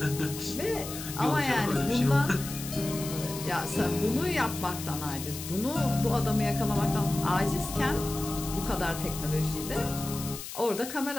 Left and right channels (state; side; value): noise; left; hiss, 9 dB below the sound